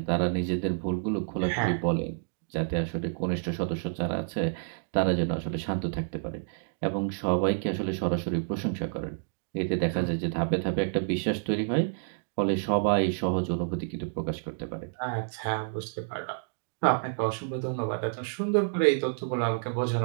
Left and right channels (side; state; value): left; silent; digital silence